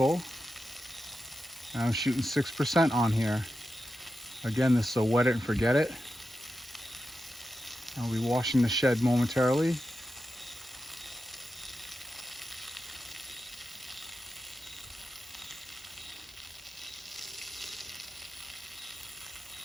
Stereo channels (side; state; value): both; normal; correlation 0.90